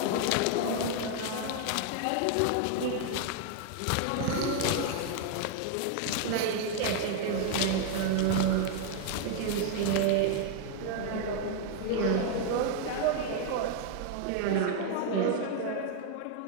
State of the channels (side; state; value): both; different; correlation 0.00